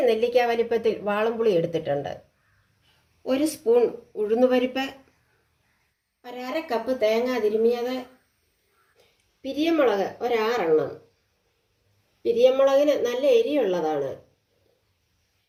നെല്ലിക്ക വലിപ്പത്തിൽ വാളംപുളി എടുത്തിട്ടുണ്ട്, ഒരു സ്പൂൺ ഉഴുന്നുപരിപ്പ്, ഒരു 1/2 കപ്പ് തേങ്ങ തിരുമിയത്, പിരിയമുളക് ഒരു 6 എണ്ണം. പിരിയമുളകിന് നല്ല എരിയുള്ളതാണ്.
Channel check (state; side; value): identical; both; correlation 1.00